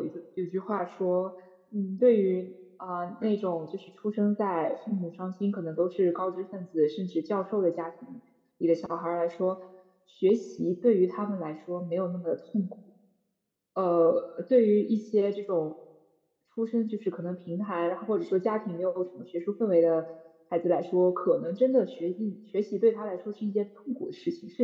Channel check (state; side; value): identical; both; correlation 1.00